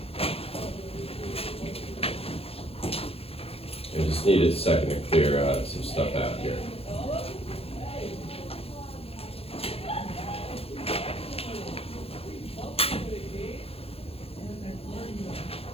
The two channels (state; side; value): late; right; 0.28 ms